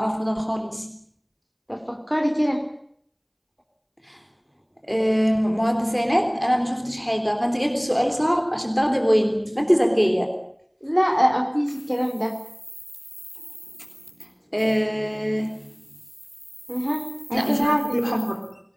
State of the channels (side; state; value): both; identical; correlation 1.00